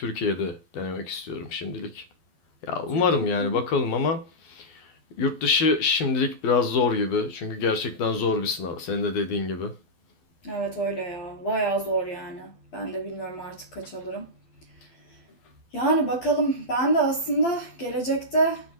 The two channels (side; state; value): right; late; 12 ms